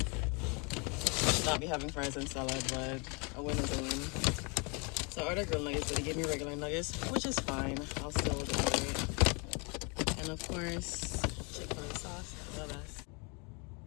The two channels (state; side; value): quieter; right; 31.9 dB